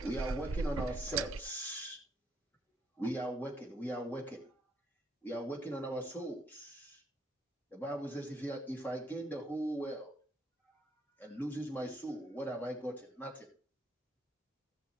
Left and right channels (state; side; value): normal; both; correlation 0.73